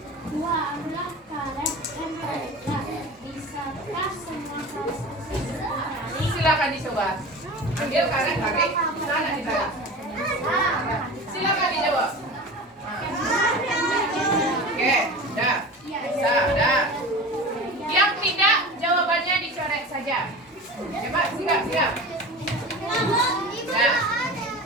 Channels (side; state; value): both; normal; correlation 0.33